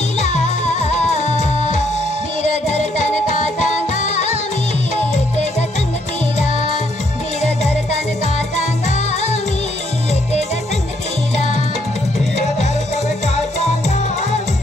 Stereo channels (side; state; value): both; normal; correlation 0.71